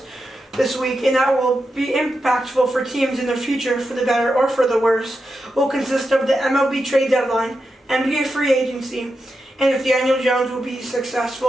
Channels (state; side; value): normal; both; correlation 0.88